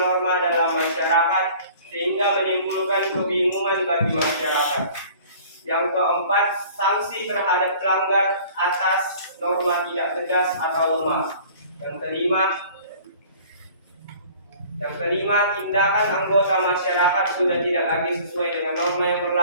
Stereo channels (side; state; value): both; inverted; correlation -0.49